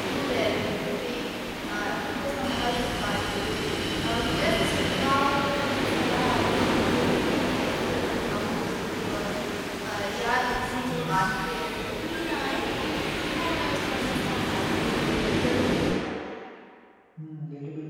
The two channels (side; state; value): both; identical; correlation 1.00